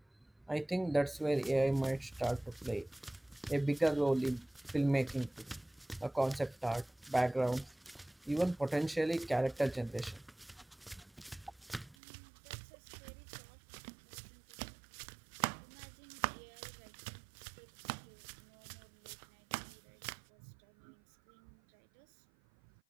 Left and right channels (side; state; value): left; drops out; at 12.0 s